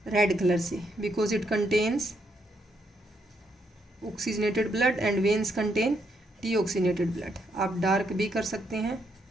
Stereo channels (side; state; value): both; normal; correlation 0.76